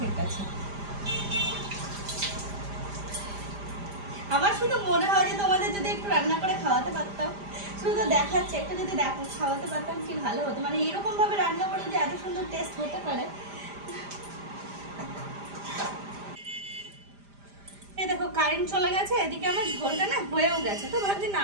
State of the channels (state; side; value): late; left; 5.0 ms